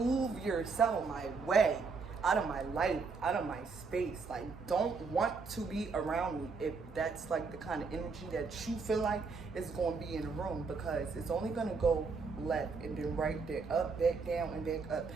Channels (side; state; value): left; quieter; 4.7 dB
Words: yourself my way, out of my life, out of my space. Like, don't want to be around me if that's like the kind of energy that you feel like is going to be in the room, because it's only going to go left and then right, then up, back down, and back up.